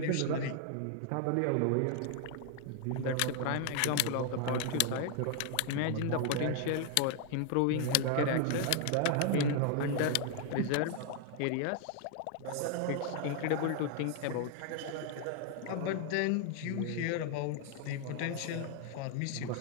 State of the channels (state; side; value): different; both; correlation 0.00